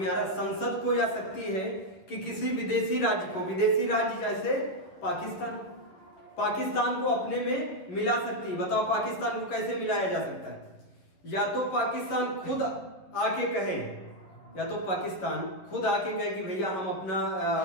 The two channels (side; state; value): right; late; 10 ms